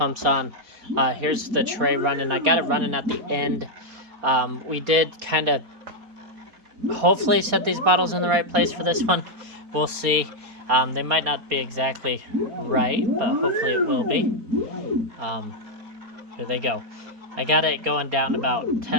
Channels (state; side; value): late; left; 4.1 ms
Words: on. Here's the tray running. I got it running at the end. We did kind of hopefully set these bottles in the right place for this one. We'll see. They might not be exactly right, but hopefully it will be. Here they go. I got it going down about